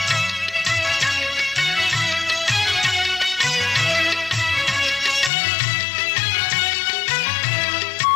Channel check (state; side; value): drops out; right; at 5.3 s